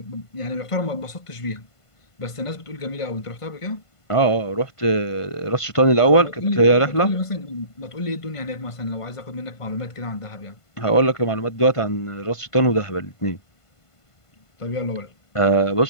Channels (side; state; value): right; late; 1.5 ms